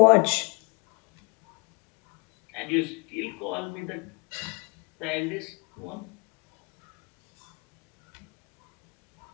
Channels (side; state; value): right; quieter; 31.7 dB